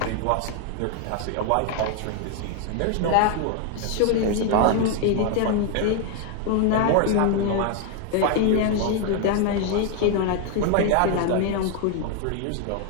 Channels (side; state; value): both; different; correlation 0.01